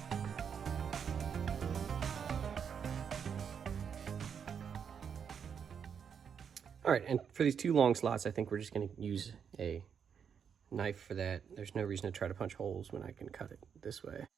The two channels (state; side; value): quieter; left; 7.3 dB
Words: All right, and for these 2 long slots, I think we're just gonna use a knife for that. There's no reason to try to punch holes when I can cut it this way.